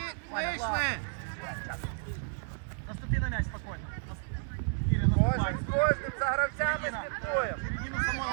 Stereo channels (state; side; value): silent; left; digital silence